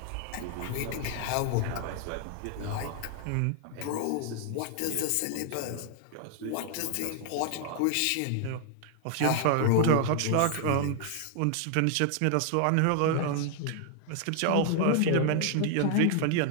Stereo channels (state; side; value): different; both; correlation 0.00